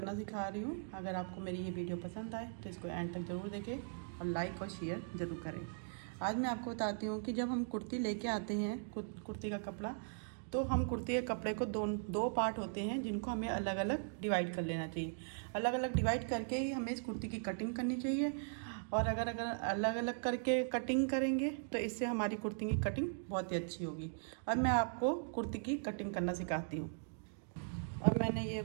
सिखा रही हूँ। अगर आपको मेरी ये वीडियो पसंद आए तो इसको एंड तक ज़रूर देखें और लाइक और शेयर ज़रूर करें। आज मैं आपको बताती हूँ कि जब हम कुर्ती लेके आते हैं कुर्ती का कपड़ा, तो हम कुर्ती के कपड़े को दो पार्ट होते हैं जिनको हमें अलग अलग डिवाइड कर लेना चाहिए। अलग अलग डिवाइड करके ही हमें इस कुर्ती की कटिंग करनी चाहिए। और अगर अगर अलग अलग करके कटिंग करेंगे तो इससे हमारी कुर्ती की कटिंग बहुत ही अच्छी होगी। अब मैं आपको कुर्ती की कटिंग करना सिखाती हूँ। अब मैंने ये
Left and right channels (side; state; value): left; silent; digital silence